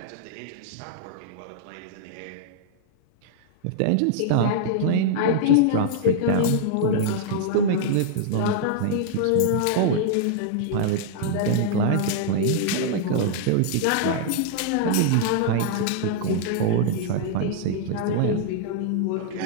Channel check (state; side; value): different; both; correlation -0.01